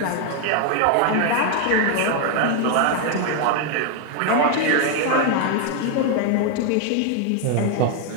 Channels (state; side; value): different; both; correlation 0.00